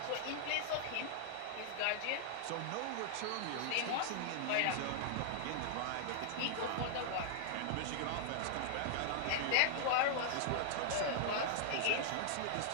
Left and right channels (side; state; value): both; different; correlation -0.01